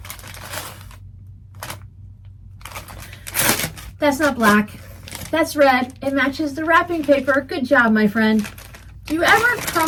That's not black. That's red. It matches the wrapping paper. Good job, my friend. Do you ever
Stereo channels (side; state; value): both; identical; correlation 1.00